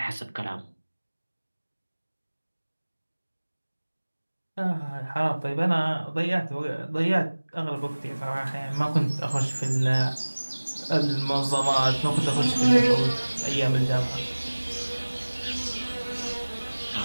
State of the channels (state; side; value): inverted; both; correlation -1.00